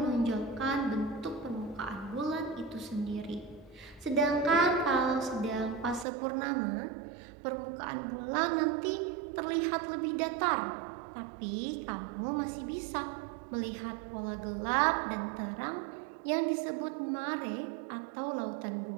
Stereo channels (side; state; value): left; drops out; at 6.1 s